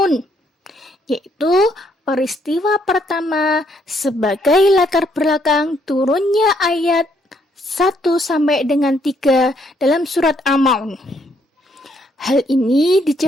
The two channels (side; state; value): both; normal; correlation 0.70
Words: yaitu peristiwa pertama sebagai latar belakang turunnya ayat 1 sampai dengan 3 dalam surat Al-Ma'un. Hal ini